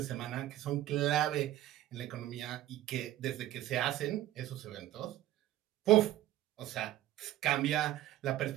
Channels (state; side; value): quieter; left; 14.1 dB